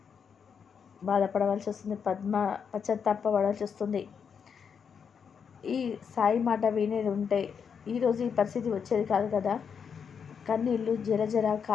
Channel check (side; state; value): right; quieter; 6.8 dB